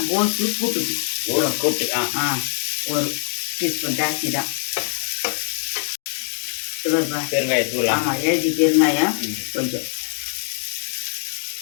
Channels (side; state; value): right; silent; digital silence